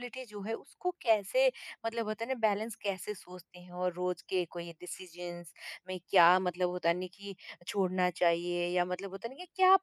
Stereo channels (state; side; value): identical; both; correlation 1.00